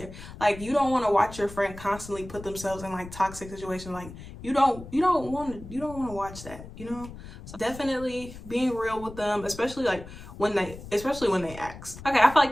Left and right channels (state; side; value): noise; left; rumble, 14 dB below the sound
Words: Like, you don't want to watch your friend constantly put themselves in like toxic situations. Like, you don't want to watch that, you know? So definitely being real with them, especially when they ask. Okay, I feel like